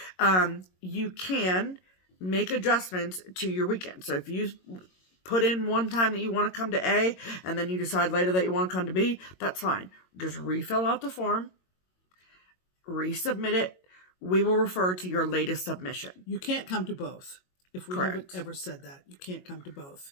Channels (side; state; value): right; late; 22 ms